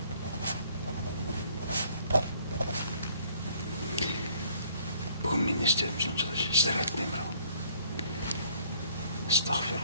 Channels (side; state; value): both; inverted; correlation -0.60